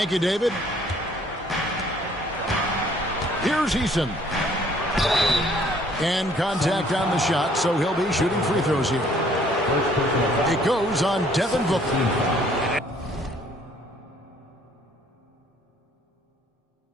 you, David. Here's Eason. And contact on the shot, so he'll be shooting free throws here. It goes on Devin Booker.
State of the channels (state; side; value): normal; both; correlation 0.60